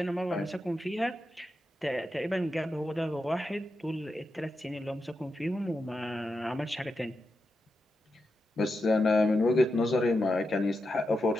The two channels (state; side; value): normal; both; correlation 0.88